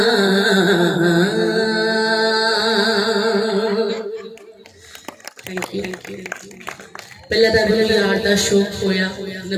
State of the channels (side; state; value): both; identical; correlation 1.00